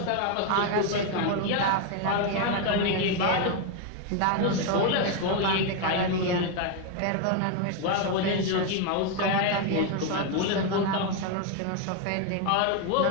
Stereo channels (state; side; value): different; both; correlation 0.01